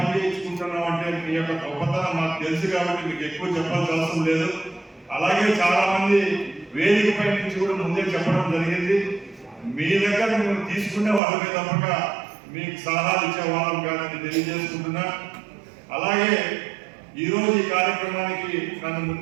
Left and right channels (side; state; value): left; drops out; at 11.2 s